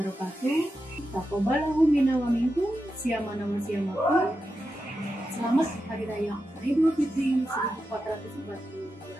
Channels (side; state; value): both; normal; correlation 0.89